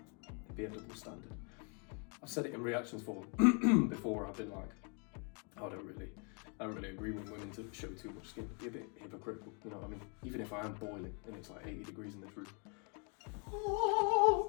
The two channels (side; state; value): right; quieter; 36.6 dB